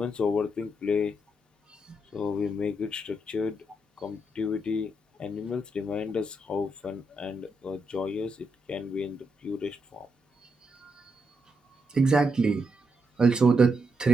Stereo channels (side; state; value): both; normal; correlation 0.81